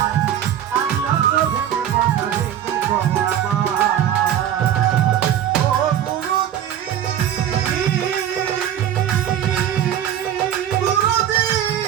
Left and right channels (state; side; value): quieter; left; 10.4 dB